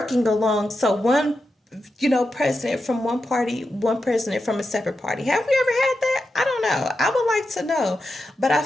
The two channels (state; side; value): normal; both; correlation 0.88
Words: along? So one, president from one party, one president from a separate party. Have we ever had that? I don't know. I would like to know. But I